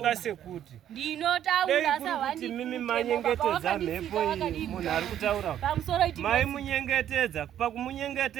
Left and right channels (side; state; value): left; quieter; 10.8 dB